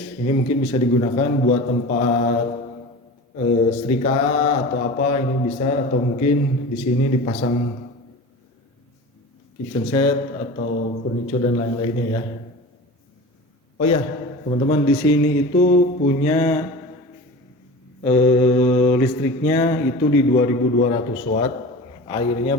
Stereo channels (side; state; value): both; normal; correlation 0.34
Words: ini mungkin bisa digunakan buat tempat setrika atau apa, ini bisa, atau mungkin di sini dipasang kitchen set atau furniture dan lain-lainnya ya. Oh ya, teman-teman, di sini itu punya listriknya itu di 2200 watt, airnya